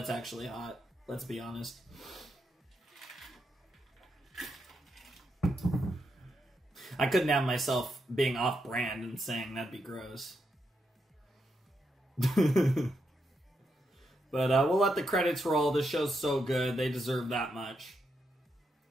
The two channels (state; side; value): normal; both; correlation 0.82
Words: actually hot. Let's be honest. I couldn't have myself being off-brand and saying that'd be gross. But we'll let the credits roll. This show's so good. They deserve that much.